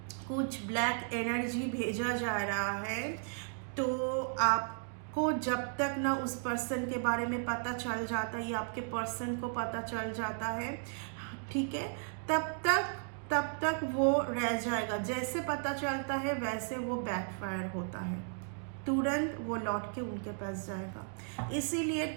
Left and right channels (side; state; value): left; silent; 54 dB below the other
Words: कुछ ब्लैक एनर्जी भेजा जा रहा है, तो आपको जब तक ना उस पर्सन के बारे में पता चल जाता है या आपके पर्सन को पता चल जाता है, ठीक है, तब तक वो रह जाएगा। जैसे पता चलता है वैसे वो बैकफायर होता है, तुरंत वो लौट के उनके पास जाएगा। इसीलिए